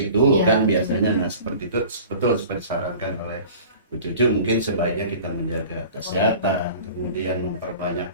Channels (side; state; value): both; inverted; correlation -0.42